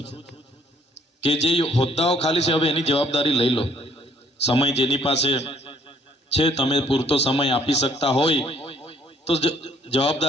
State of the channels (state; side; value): normal; both; correlation 0.63